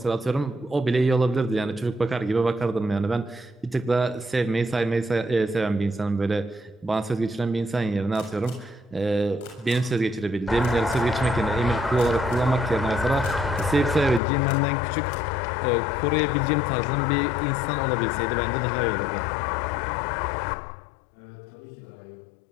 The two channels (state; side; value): drops out; right; at 14.2 s